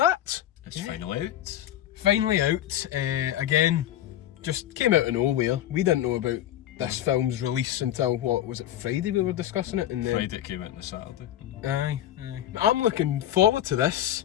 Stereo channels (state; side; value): quieter; right; 12.5 dB